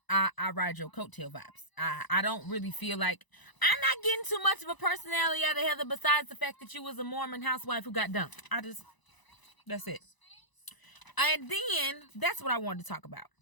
ride your coattail vibes. I don't really feel like, I'm not getting too much of a personality out of Heather, besides the fact that you was a Mormon housewife who got dumped. That's it. And then that's what I wanted to talk about.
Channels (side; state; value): right; late; 1.0 ms